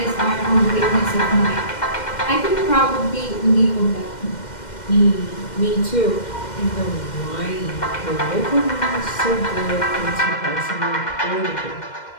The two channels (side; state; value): right; late; 2.1 ms